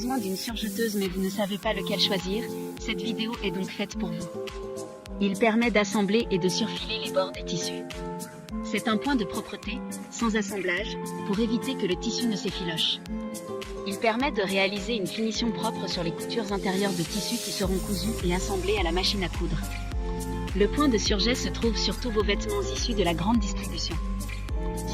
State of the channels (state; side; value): identical; both; correlation 1.00